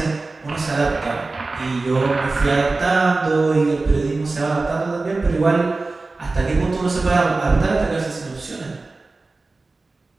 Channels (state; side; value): quieter; left; 3.5 dB